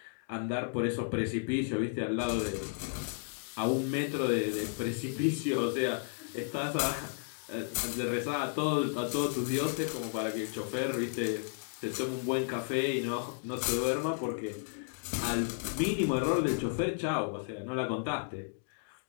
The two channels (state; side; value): silent; right; digital silence